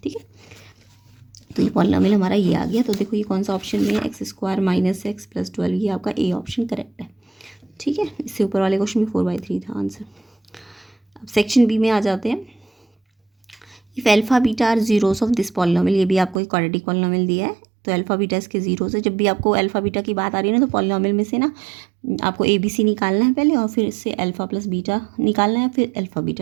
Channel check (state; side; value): drops out; left; at 16.4 s